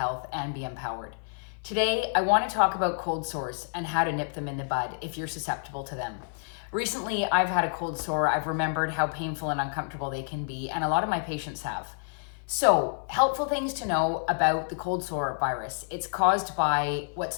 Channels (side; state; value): right; silent; 55 dB below the other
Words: and be empowered. Today, I want to talk about cold sores and how to nip them in the bud if you're susceptible to them. Recently, I've had a cold sore. I've remembered how painful and uncomfortable they can be, and a lot of my patients have. So, helpful things to know about the cold sore virus. It's caused by